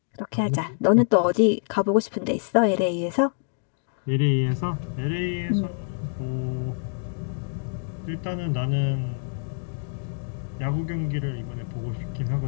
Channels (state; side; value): silent; right; digital silence